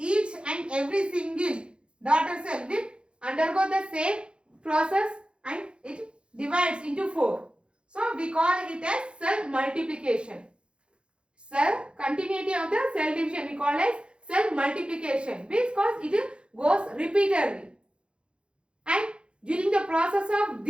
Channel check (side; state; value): left; late; 0.056 ms